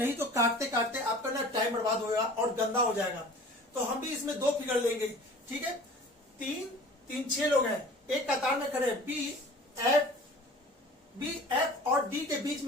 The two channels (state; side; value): normal; both; correlation 0.44